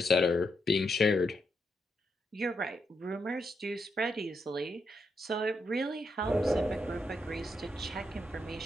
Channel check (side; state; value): both; normal; correlation 0.81